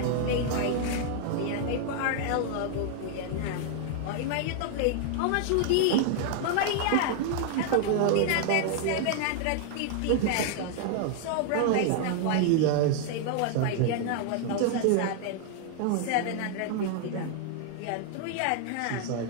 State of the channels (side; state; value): both; different; correlation 0.00